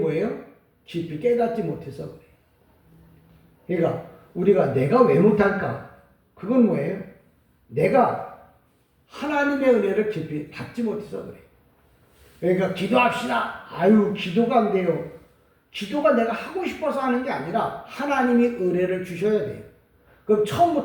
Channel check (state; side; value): identical; both; correlation 1.00